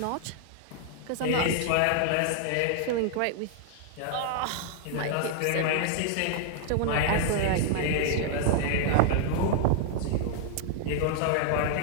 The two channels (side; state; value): both; different; correlation -0.01